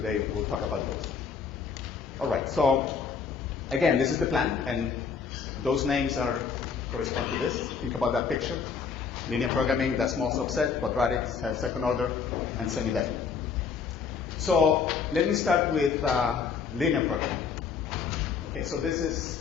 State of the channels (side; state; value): right; quieter; 6.0 dB